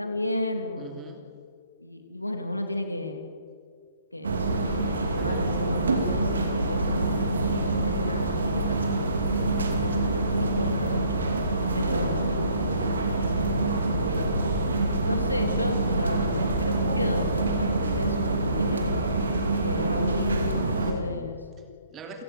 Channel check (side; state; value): both; inverted; correlation -0.63